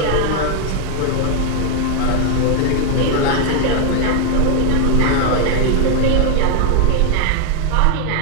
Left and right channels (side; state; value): both; different; correlation 0.00